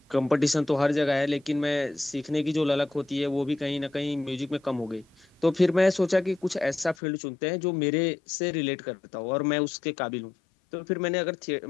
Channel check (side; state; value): right; drops out; at 7.0 s